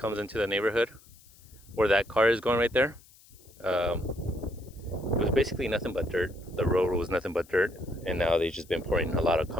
into the neighborhood where that car is going right there. It was basically nothing but dirt. The road was nothing but dirt, and now they've just been pouring a lot of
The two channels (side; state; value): left; noise; hiss, 26 dB below the sound